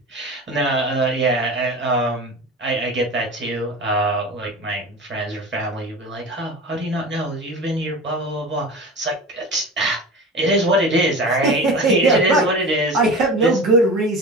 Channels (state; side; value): normal; both; correlation 0.33